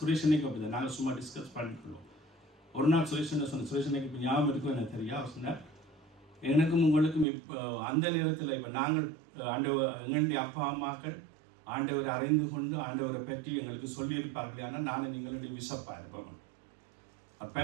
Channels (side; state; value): left; drops out; at 7.2 s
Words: அப்படித்தான். நாங்கள் சும்மா டிஸ்கஸ் பண்ணிக்கொள்வோம். ஒரு நாள் சுரேஷனுக்கு இப்போ ஞாபகம் இருக்கும் எனக்கு தெரியா. அவர் சொன்னார், எனக்கும் உங்களுக்கும் இப்போ அந்த நேரத்தில் இப்போ நாங்கள் எங்களுடைய அப்பா அம்மாக்கள் ஆண்டவரை அறிந்து கொண்டு ஆண்டவரை பற்றி எங்களுக்கு சொல்லியிருப்பார்கள். ஆனால் நானும் நீங்களுடைய விசப்பா இருப்போம்.